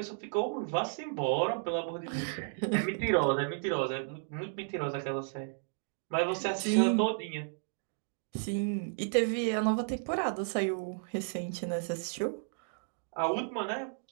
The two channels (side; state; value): left; silent; digital silence